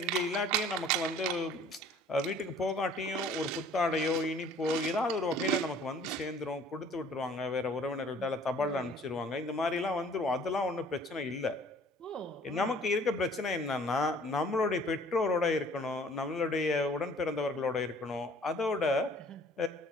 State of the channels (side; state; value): both; normal; correlation 0.53